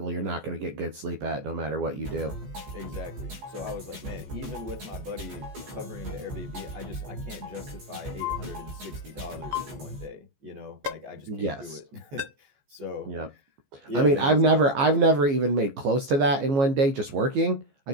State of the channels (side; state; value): left; late; 15 ms